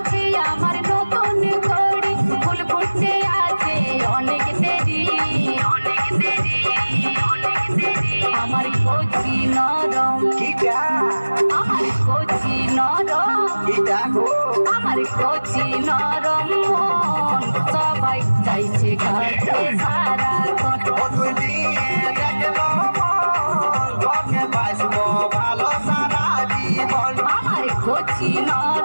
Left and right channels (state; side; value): inverted; both; correlation -1.00